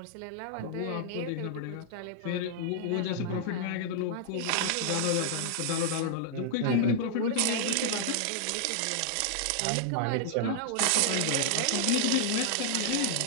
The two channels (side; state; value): both; different; correlation -0.01